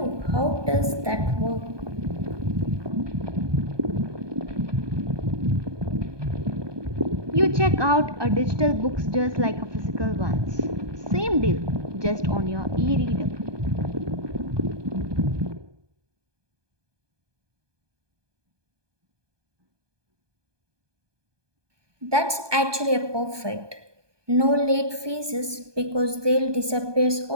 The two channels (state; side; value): late; left; 1.2 ms